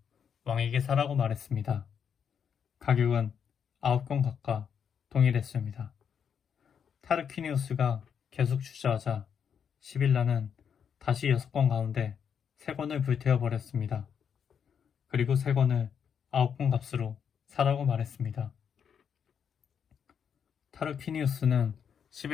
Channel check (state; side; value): quieter; right; 7.5 dB